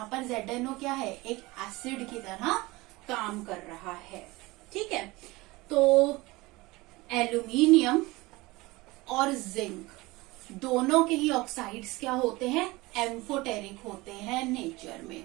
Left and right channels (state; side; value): quieter; left; 21.5 dB